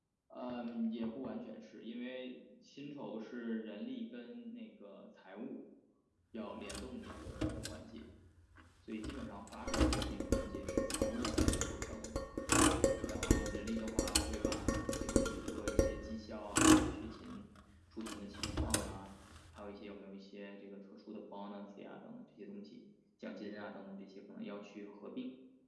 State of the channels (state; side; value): identical; both; correlation 1.00